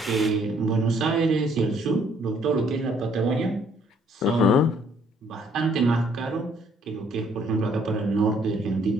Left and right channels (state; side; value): normal; both; correlation 0.64